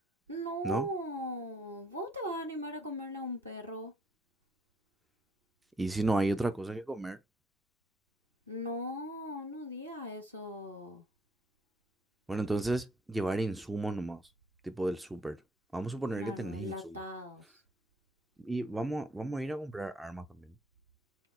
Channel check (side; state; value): both; normal; correlation 0.68